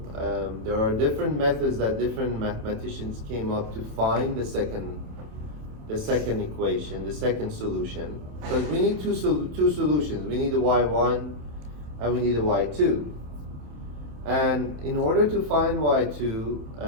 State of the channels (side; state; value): left; late; 27 ms